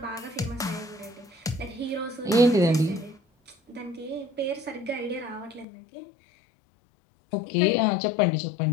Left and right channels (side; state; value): right; drops out; at 5.7 s